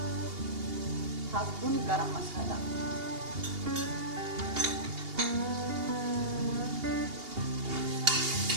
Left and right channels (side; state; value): left; late; 2.8 ms